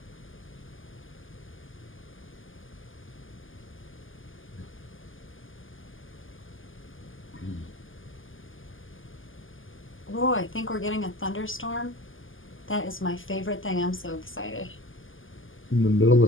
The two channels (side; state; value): right; late; 0.58 ms